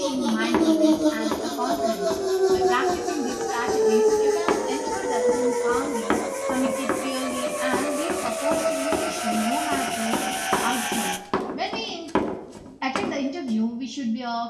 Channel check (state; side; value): identical; both; correlation 1.00